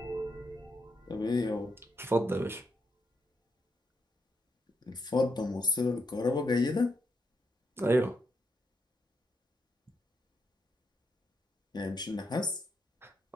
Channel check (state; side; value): normal; both; correlation 0.80